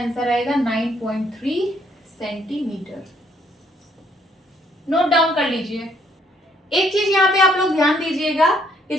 आएगा 9.3 सेंटीमीटर। नोट डाउन कर लीजिए। एक चीज यहाँ पे आप लोग ध्यान दीजिएगा कि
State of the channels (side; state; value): both; normal; correlation 0.68